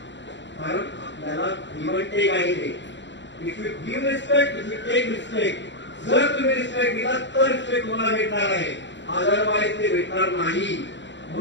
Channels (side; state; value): right; late; 0.53 ms